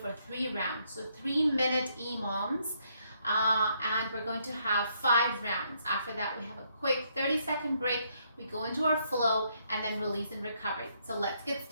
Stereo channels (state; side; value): inverted; both; correlation -0.73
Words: for 3 rounds. So 3-minute EMOMs. And we're going to have 5 rounds. After that, we have a quick 30-second break. We go into our flow and then release and recovery. So let's get